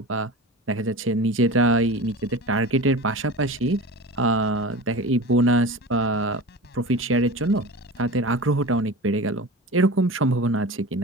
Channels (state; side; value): normal; both; correlation 0.32